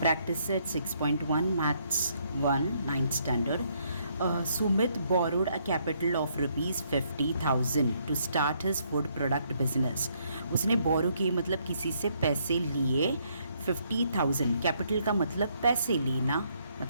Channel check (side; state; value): both; inverted; correlation -0.71